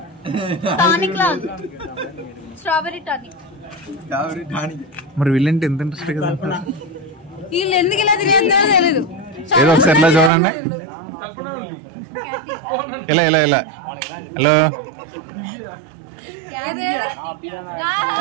టానిక్ లా, స్ట్రాబెరీ టానిక్. మరి వీళ్ళంటే ఎంత ఇంట్రెస్ట్ కదా, వీళ్ళు ఎందుకు ఇలా తినేదో తెలీదు. ఏదో ఒకసారి ఇలా చూడండి. ఇలా ఇలా ఇలా హలో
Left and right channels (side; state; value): left; drops out; at 10.3 s